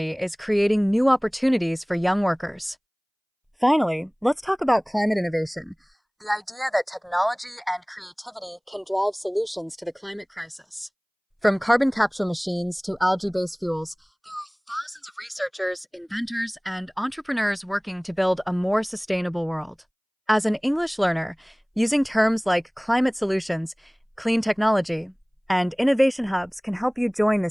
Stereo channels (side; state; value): both; identical; correlation 1.00